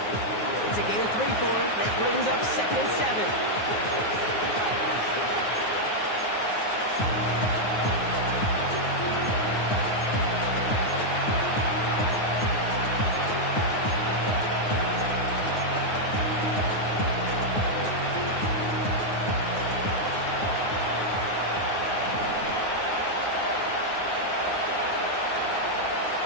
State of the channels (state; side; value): late; right; 9.5 ms